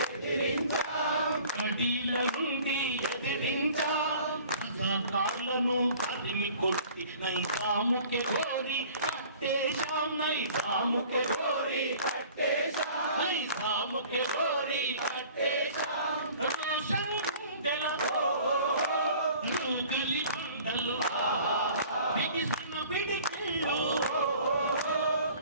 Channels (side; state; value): both; inverted; correlation -0.49